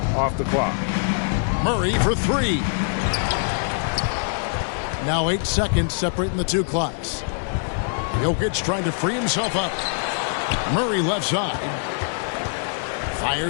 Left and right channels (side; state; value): right; silent; 62 dB below the other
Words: off the clock. Murray for 3. Now 8 seconds separating the two clocks. Jokic trying to free himself up. Murray left side.